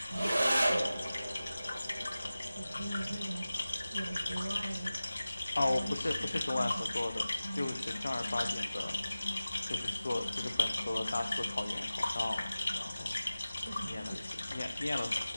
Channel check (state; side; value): inverted; both; correlation -0.96